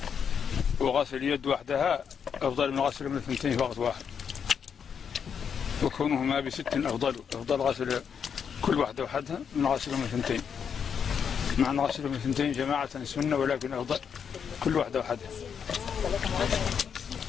وغسل اليد وحدها أفضل من غسل من الثنتين في وقت واحد، وكونهما بست أفضل غسل كل واحدة وحدها من غسل من الثنتين، مع أن غسل من الثنتين جماعة سنة، ولكن أفضل كل واحدة وحدها.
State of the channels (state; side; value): quieter; right; 7.2 dB